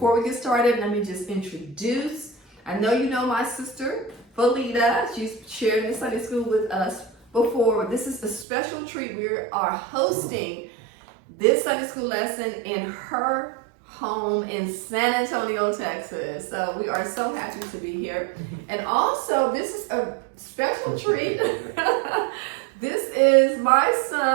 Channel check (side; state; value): left; drops out; at 8.5 s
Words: we get started, let me just introduce. I know you know my sister, Felita. She's shared in Sunday school with us before. This is a special treat. We are hosting this Sunday school lesson in her home in San Antonio, Texas. So we are so happy to be here. And also, this is a special treat. This is my